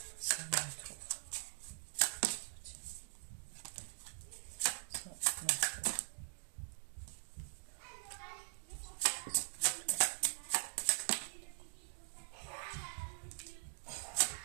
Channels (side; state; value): left; silent; digital silence